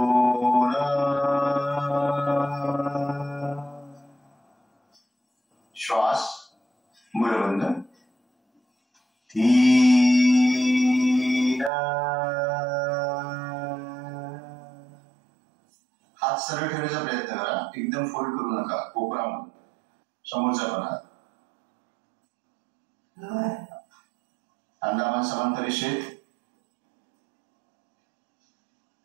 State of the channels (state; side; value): drops out; left; at 11.7 s